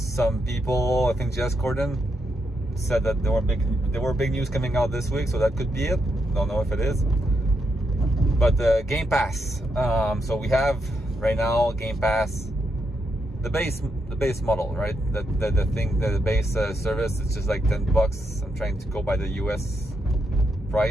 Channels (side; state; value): both; normal; correlation 0.81